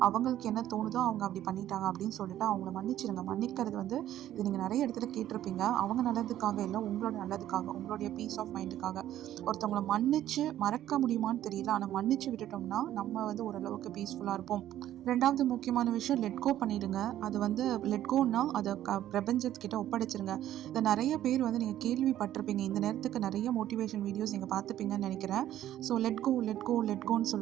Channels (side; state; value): left; quieter; 12.5 dB